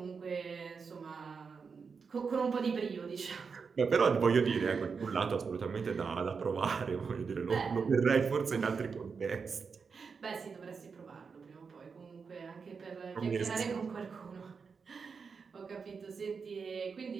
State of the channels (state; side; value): quieter; left; 5.5 dB